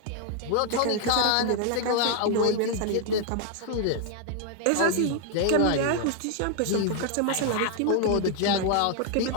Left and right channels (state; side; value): different; both; correlation 0.00